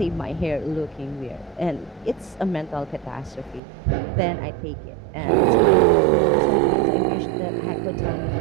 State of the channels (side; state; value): left; drops out; at 3.6 s